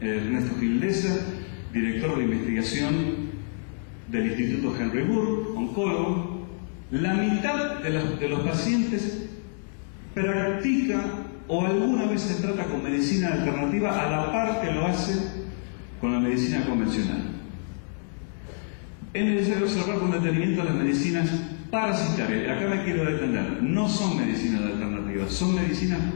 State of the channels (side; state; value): right; silent; digital silence